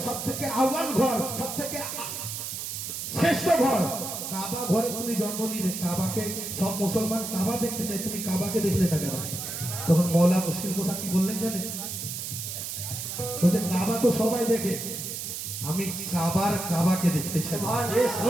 সব থেকে আউয়াল ঘর, সব থেকে শ্রেষ্ঠ ঘর কাবা ঘরে তুমি জন্ম নিলে, কাবাকে সব মুসলমান কাবা দেখতে চায়, তুমি কাবাকে দেখলে না কেন? তখন মওলা মুশকিল গোসা কি বললেন জানেন? বলছে কাবা তো সবাই দেখে, আমি কাবাকে দেখতে চাই।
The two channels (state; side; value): noise; right; hiss, 6 dB below the sound